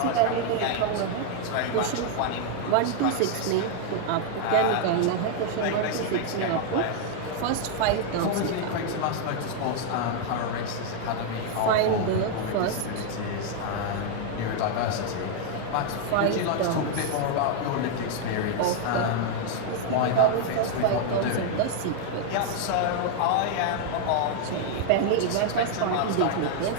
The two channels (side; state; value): both; different; correlation 0.00